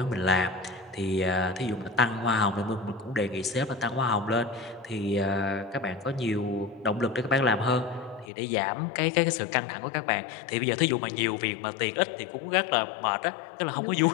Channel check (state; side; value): drops out; right; at 8.3 s